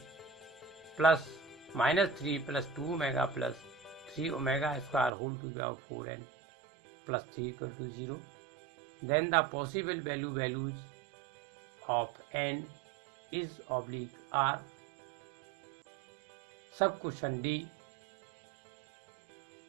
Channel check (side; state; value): left; drops out; at 5.1 s